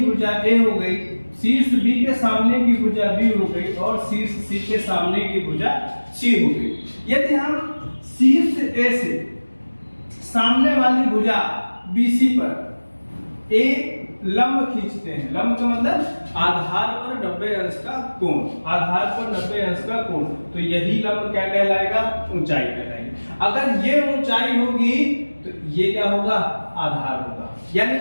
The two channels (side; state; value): both; inverted; correlation -1.00